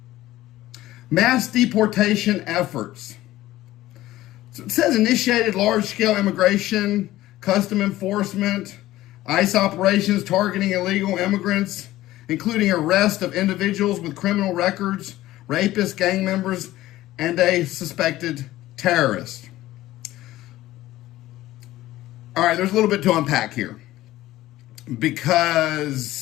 Mass deportation efforts. So it says initiated large-scale immigration, custom enforcement, ICE operations targeting illegal immigrants, including arrest of individuals with criminal records, rapists, gang members, and a suspected terrorist. All right, there's a little bit to unpack here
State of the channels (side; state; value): right; quieter; 15.8 dB